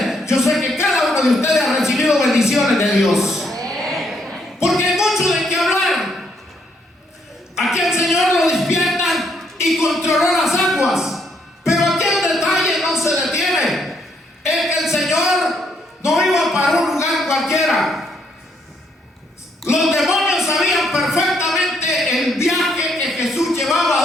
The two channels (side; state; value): both; normal; correlation 0.72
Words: yo sé que cada uno de ustedes ha recibido bendiciones de Dios. Porque hay mucho de qué hablar. Aquí el Señor lo despierta y controló las aguas. Pero aquí el detalle no se detiene. Es que el Señor no iba para un lugar cualquiera. Los demonios sabían perfectamente el viaje que Jesús llevaba,